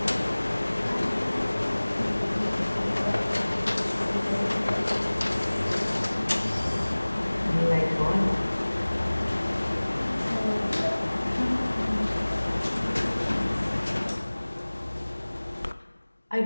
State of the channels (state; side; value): inverted; both; correlation -1.00